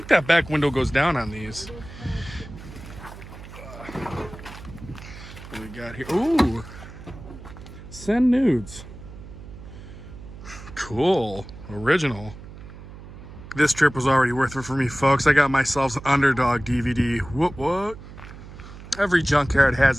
that back window goes down on these. What we got here? Ooh. Send nudes. Cool. Original. This trip was already worth it for me, folks. I got myself an Underdog DVD. What? Every junkyard has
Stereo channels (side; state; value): right; noise; hum, 15 dB below the sound